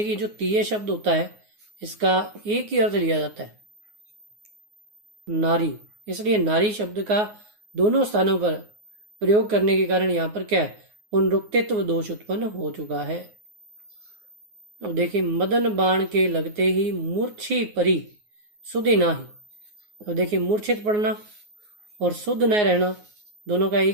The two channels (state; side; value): late; left; 9.5 ms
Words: जो तिये शब्द होता है इसका एक ही अर्थ लिया जाता है नारी, इसलिए नारी शब्द का दोनों स्थानों पर प्रयोग करने के कारण यहाँ पर क्या है, पुनरुक्तित्व दोष उत्पन्न हो चुका है। अब देखिए मदन बाण के लगते ही मूर्छी परी सुधि नाही। अब देखिए मूर्छित पड़ना और शुद्ध न रहना दोनों का